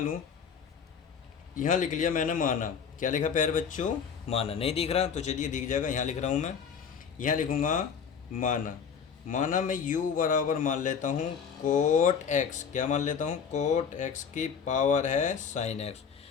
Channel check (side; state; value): right; quieter; 6.8 dB